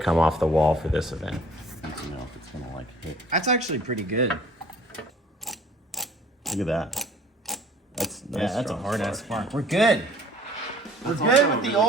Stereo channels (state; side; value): normal; both; correlation 0.52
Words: off the wall for this event. I don't know if it's gonna like hit. That's actually pretty good. Look at that. That's Yeah, that's a strong hard ass spark. spark. We're good. We're That's good also with the really-